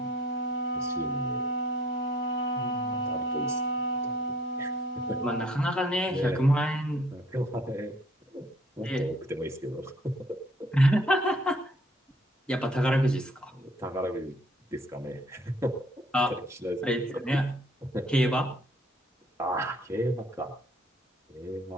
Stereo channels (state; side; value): normal; both; correlation 0.59